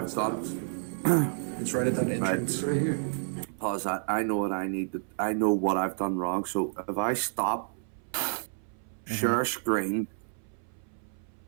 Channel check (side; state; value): left; silent; 58 dB below the other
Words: done. It's right at that entrance. It's right here. Pause that. I know what I need to. I know what I've done wrong. So if I stop, share screen.